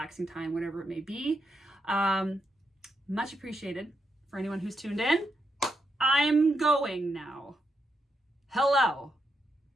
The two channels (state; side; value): normal; both; correlation 0.82